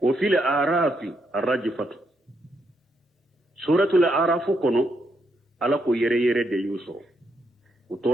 وفي الأعراف الرجفة سورة الأعراف كنو ألا كو يري دي يوسو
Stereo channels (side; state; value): both; normal; correlation 0.78